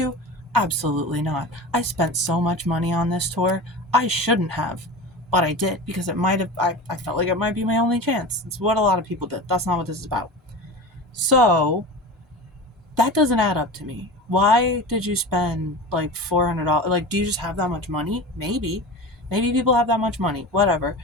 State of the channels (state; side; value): normal; both; correlation 0.31